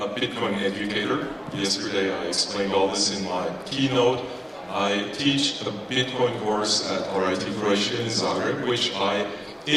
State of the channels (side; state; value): both; identical; correlation 1.00